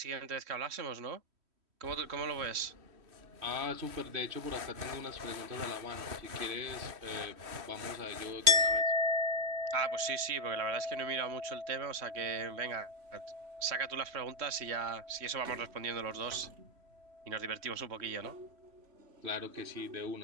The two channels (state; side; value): late; left; 3.1 ms